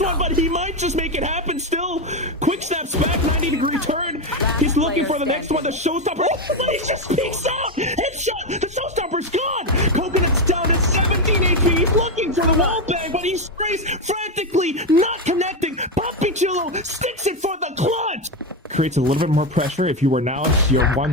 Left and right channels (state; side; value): normal; both; correlation 0.10